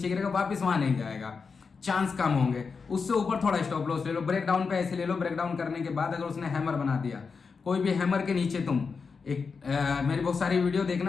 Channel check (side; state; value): right; quieter; 5.1 dB